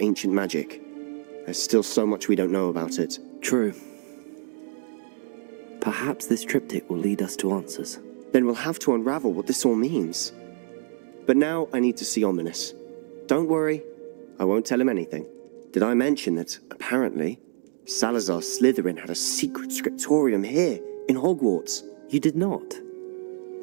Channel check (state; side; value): silent; left; digital silence